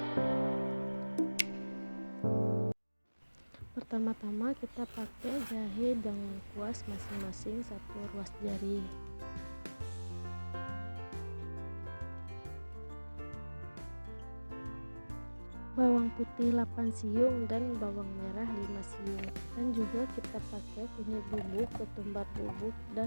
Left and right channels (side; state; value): both; inverted; correlation -1.00